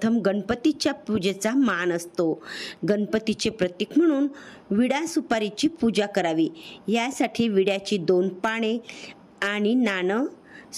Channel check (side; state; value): both; identical; correlation 1.00